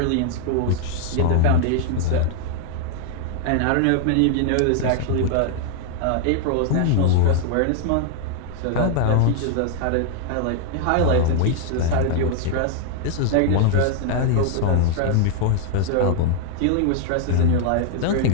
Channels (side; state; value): both; different; correlation 0.00